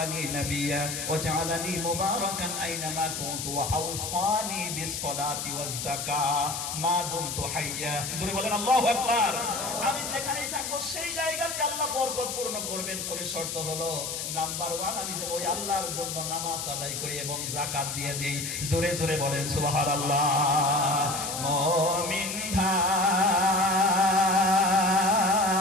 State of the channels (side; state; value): left; noise; hiss, 4 dB below the sound